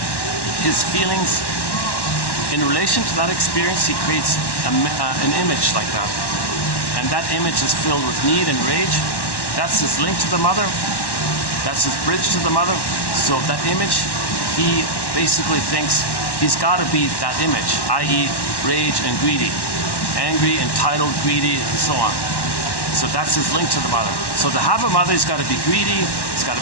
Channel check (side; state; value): right; late; 1.1 ms